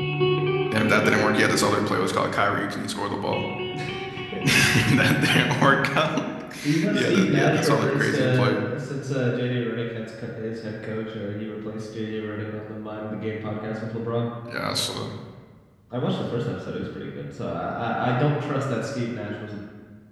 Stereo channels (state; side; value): identical; both; correlation 1.00